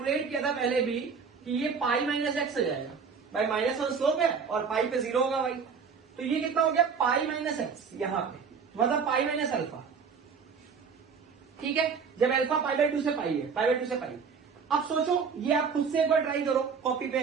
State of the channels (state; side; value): quieter; left; 5.9 dB